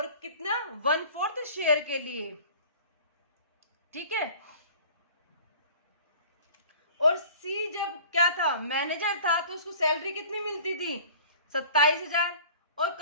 कितना, 1/4 शेयर के लिए। ठीक है, और सी जब क्या था, मैनेजर था, तो उसको सैलरी कितनी मिलती थी, 27,000, और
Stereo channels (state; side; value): inverted; both; correlation -0.45